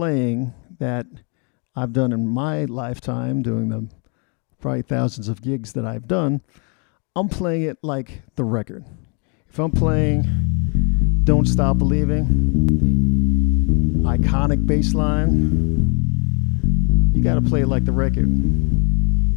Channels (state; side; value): quieter; right; 36.3 dB